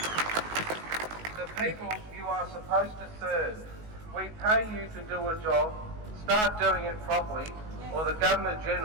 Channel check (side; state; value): left; late; 19 ms